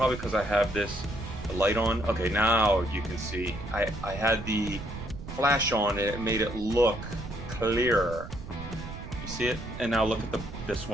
because I have the light on. Okay, now you can see. I had the flash on and it made it look clearer. You see it? And now look at this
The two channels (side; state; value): right; noise; rumble, 10 dB below the sound